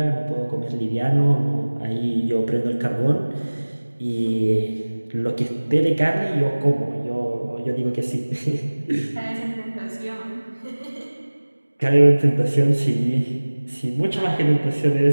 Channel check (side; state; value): both; inverted; correlation -1.00